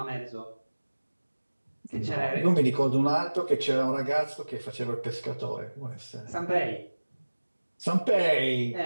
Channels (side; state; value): both; inverted; correlation -1.00